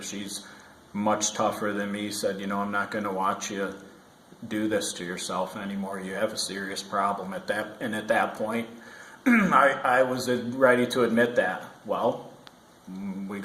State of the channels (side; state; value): both; identical; correlation 1.00